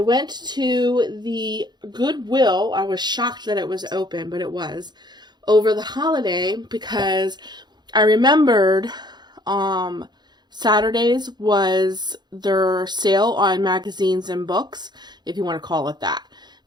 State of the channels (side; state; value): left; late; 0.21 ms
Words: went to the Goodwill. I was shocked that it was open, but it was over the holiday because I remembered Saturdays was their sale on magazines and books, if you want to call it that.